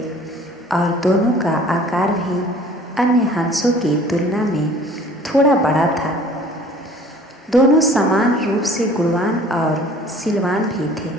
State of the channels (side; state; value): both; normal; correlation 0.50